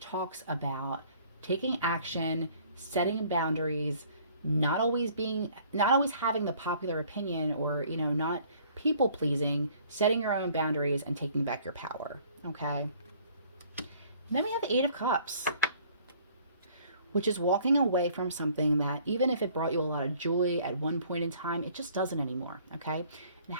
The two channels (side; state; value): both; inverted; correlation -0.57